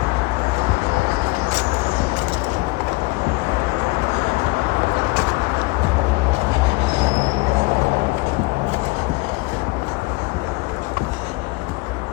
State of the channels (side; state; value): right; quieter; 24.0 dB